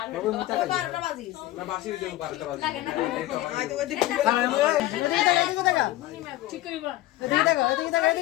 ও 12টা বাজিস না বাসি দেব 12টা বাজে লাগে না আই তো ওদিকে ঠিক কইবা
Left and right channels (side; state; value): right; quieter; 16.1 dB